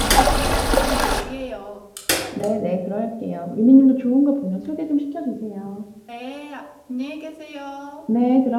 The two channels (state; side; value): identical; both; correlation 1.00